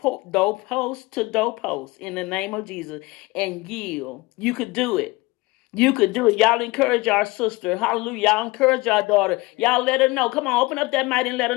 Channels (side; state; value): right; quieter; 22.7 dB